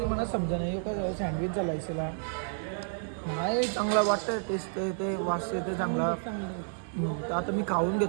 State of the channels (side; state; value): left; silent; digital silence